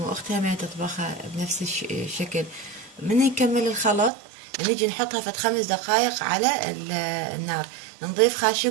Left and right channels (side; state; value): left; drops out; at 4.1 s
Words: ما تطبخها بنفس الشكل. من يكمل الخلط نيجي نحطها فد 5 دقائق على النار، نضيف